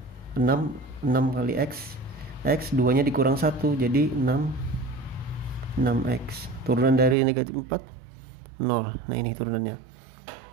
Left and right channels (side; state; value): left; drops out; at 7.2 s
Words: 6. 6 kali x, x 2 nya dikurang 1 jadi 6x. Turunan dari negatif 4 0. Nah, ini turunannya.